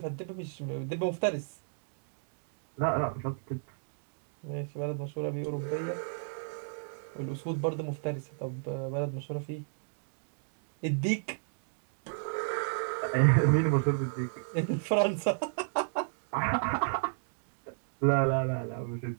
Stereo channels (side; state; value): left; silent; digital silence